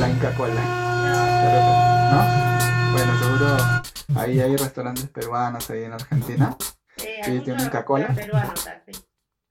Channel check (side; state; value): both; identical; correlation 1.00